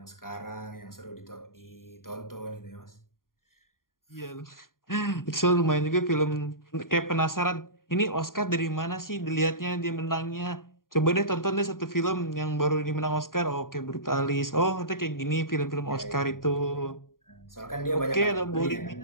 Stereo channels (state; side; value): late; right; 0.91 ms